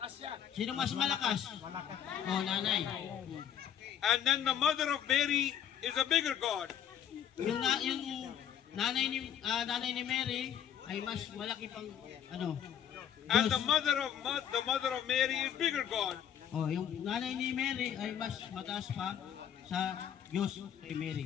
Sino mas malakas? Oh, nanay. And then the mother of Mary is a bigger God. Yung nanay ni Mary ay mas malaki pang ano? And Diyos. the mother of Mary is bigger God. Oh, yung nanay ni Mary ay mas mataas pa sa Diyos kay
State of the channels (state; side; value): quieter; right; 9.4 dB